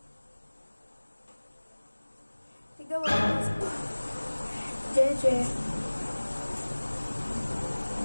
Tignan mo. Jeje.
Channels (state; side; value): inverted; both; correlation -1.00